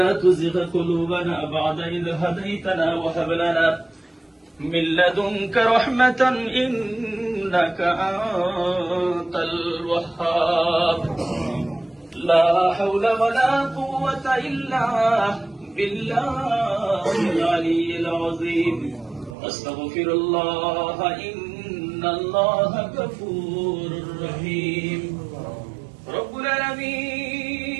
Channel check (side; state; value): left; drops out; at 19.4 s